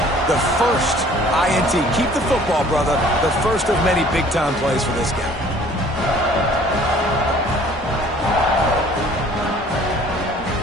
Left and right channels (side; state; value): both; normal; correlation 0.54